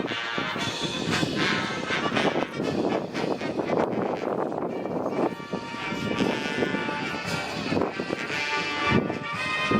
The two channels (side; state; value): both; identical; correlation 1.00